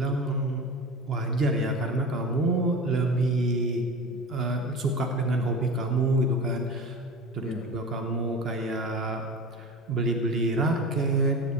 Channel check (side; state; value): both; normal; correlation 0.31